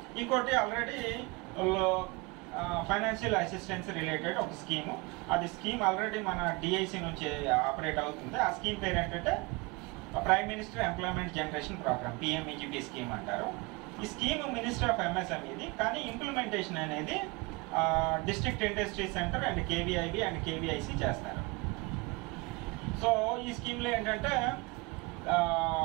ఇంకోటి ఆల్రెడీ ఫైనాన్షియల్ అసిస్టెన్స్ రిలేటెడ్ ఒక స్కీము, అది స్కీమ్ ఆల్రెడీ మన డిఐసి నుంచి ఆపరేట్ అవుతుంది. ఆ స్కీమ్ పేరు ఏంటంటే prime minister employment generation program, PMEGP scheme అంటారు. ఈ స్కీమ్ మినిస్టర్ ఆఫ్ ఎంఎస్ఎంఈది, కానీ ఇంప్లిమెంటేషన్ అనేది district industry center and KVIB and KVIC చేస్తారు. సో ఈ స్కీమ్లో ఏంటంటే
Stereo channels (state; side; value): quieter; left; 26.2 dB